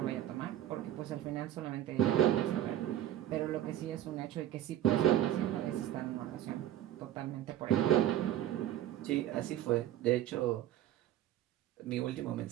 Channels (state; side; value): quieter; left; 12.6 dB